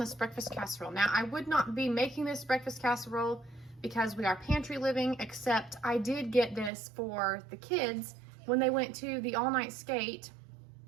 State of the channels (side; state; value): left; drops out; at 6.7 s